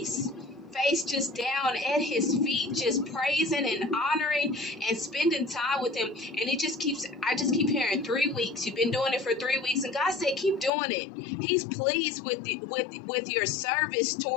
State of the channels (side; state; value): right; drops out; at 10.7 s